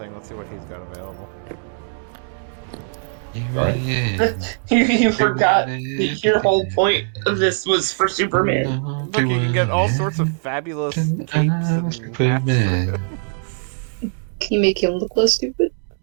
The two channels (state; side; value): silent; left; digital silence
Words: let's see what he's got available. You forgot that your whole point of this was for Superman. Look, you can get all sorts of fabulous capes and hats for him. Can you make him look less stupid?